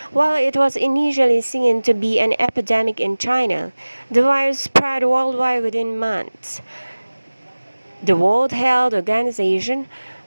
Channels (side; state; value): both; inverted; correlation -1.00